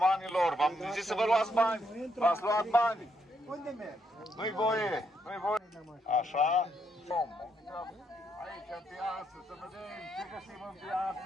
v-am zis să vă luați bani, v-ați luat bani. Unde mergi? Nu-i voie, nu-i voie. Așa? Aici în piață, să vedem ce găsim în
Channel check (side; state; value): both; normal; correlation 0.76